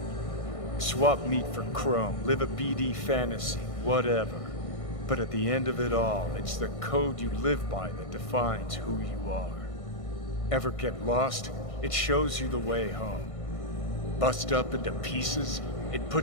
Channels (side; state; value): right; late; 1.6 ms